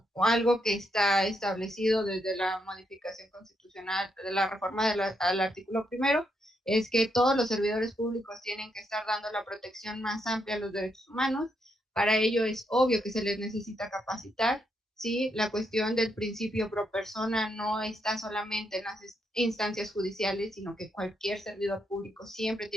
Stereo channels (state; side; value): normal; both; correlation 0.79